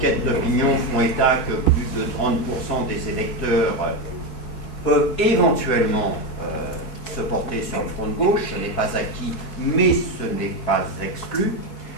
d'opinion font état que plus de 30% des électeurs peuvent éventuellement se porter sur le front de gauche. Ce n'est pas acquis, mais ce n'est pas exclu.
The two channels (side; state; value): right; late; 4.7 ms